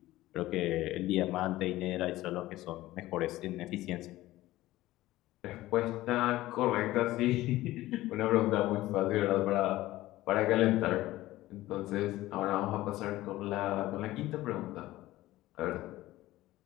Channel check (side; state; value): right; quieter; 16.6 dB